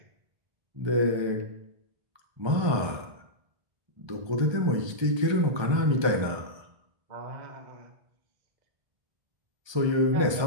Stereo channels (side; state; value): left; late; 1.3 ms